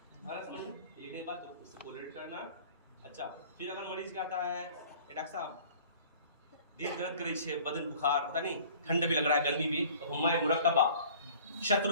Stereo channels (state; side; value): inverted; both; correlation -0.48